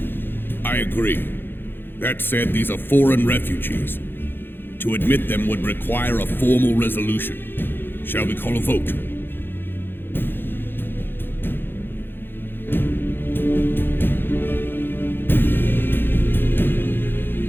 I agree. That said, these are foreign refugees. To admit them would require a formal resolution. Shall we call a vote?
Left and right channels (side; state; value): right; late; 0.10 ms